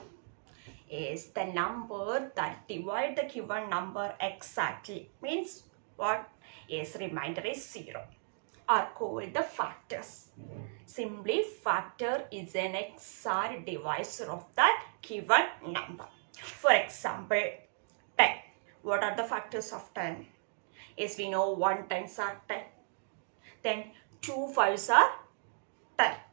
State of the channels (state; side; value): silent; left; digital silence